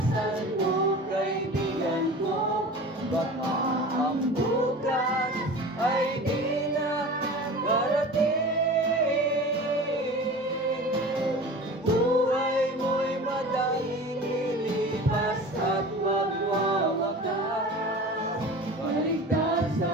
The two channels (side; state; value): both; normal; correlation 0.36